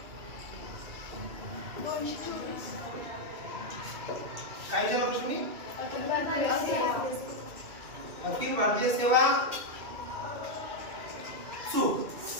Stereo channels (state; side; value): late; left; 2.6 ms